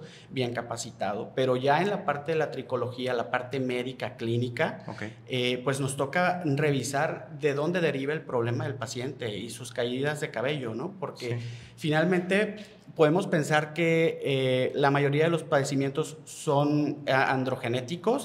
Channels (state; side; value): identical; both; correlation 1.00